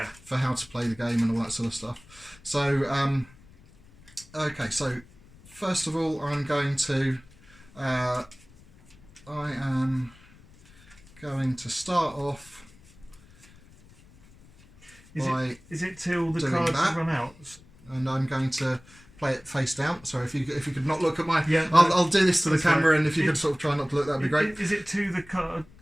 how to play the game and all that sort of stuff. So okay. So first of all, I am going to start off. Is it till the cards run out? And I'm going to play it face down. So if you could not look at my, yeah, I'll do this to the camera, and if you could sort of try not to look, that'd be great. Is it to the card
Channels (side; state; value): left; noise; rumble, 25 dB below the sound